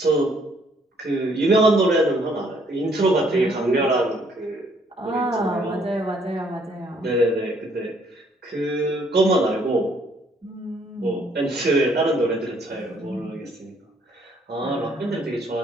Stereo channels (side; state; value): both; normal; correlation 0.66